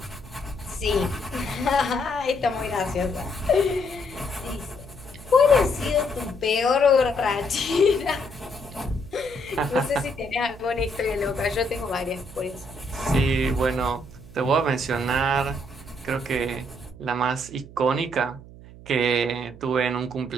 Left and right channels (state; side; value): noise; right; hum, 18 dB below the sound